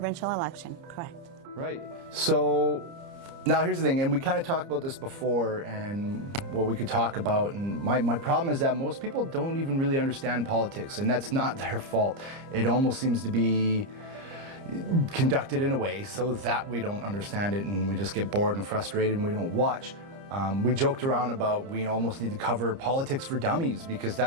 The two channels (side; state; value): left; late; 30 ms